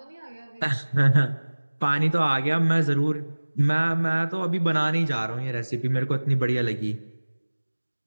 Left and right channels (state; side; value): inverted; both; correlation -1.00